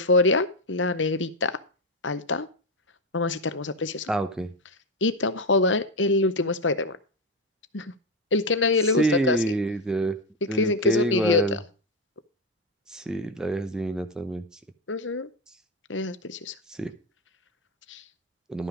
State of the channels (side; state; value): both; normal; correlation 0.09